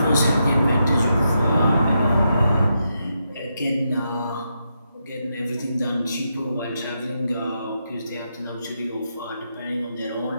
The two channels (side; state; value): both; inverted; correlation -0.83